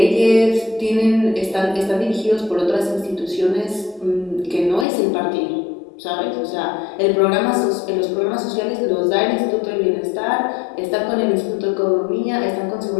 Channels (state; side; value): drops out; right; at 4.9 s